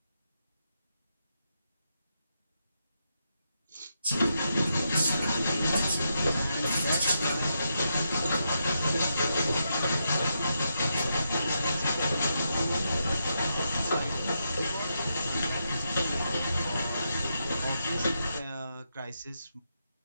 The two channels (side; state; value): both; inverted; correlation -0.83